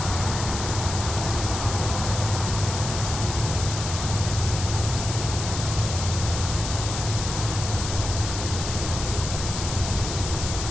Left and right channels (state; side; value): noise; left; hiss, 6 dB below the sound